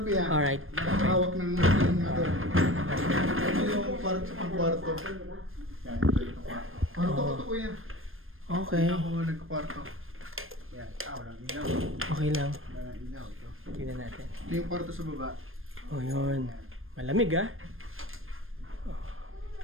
po yan. Alright. Nakahawak ng ano. Ito yung kwarto. Yan, ito yung kwarto. Kwarto ko to kuya. Okay. Ako nagkakwarto. Yan, walang ilaw. Okay lang. Walang ilaw ito. Tingnan natin. Ito yung kwarto sa baba. Oh, yun. Malamig, ah.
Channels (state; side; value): late; left; 0.60 ms